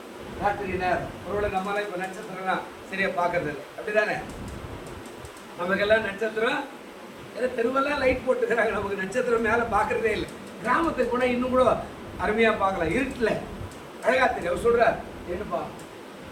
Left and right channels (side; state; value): both; identical; correlation 1.00